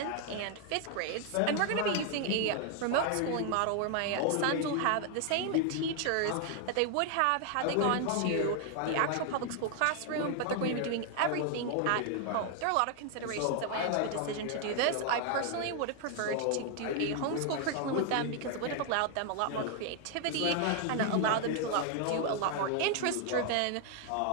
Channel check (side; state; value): both; different; correlation 0.00